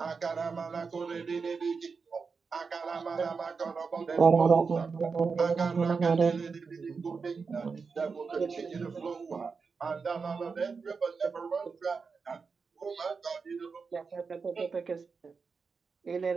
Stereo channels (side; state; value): left; quieter; 5.1 dB